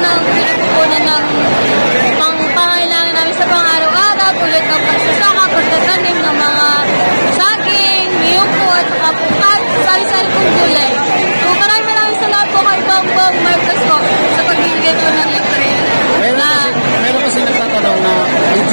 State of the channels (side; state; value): both; inverted; correlation -1.00